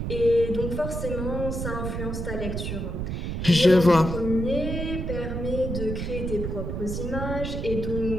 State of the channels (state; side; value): noise; right; rumble, 4 dB below the sound